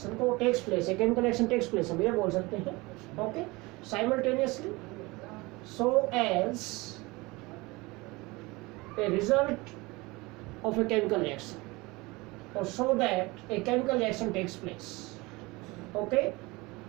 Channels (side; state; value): left; quieter; 23.2 dB